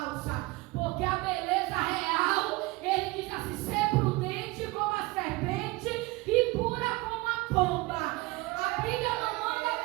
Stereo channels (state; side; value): quieter; left; 22.2 dB